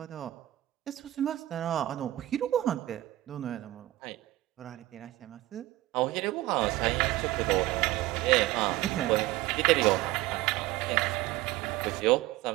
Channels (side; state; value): left; quieter; 16.5 dB